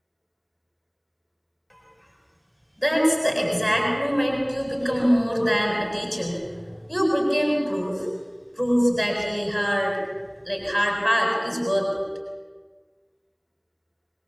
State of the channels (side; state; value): both; identical; correlation 1.00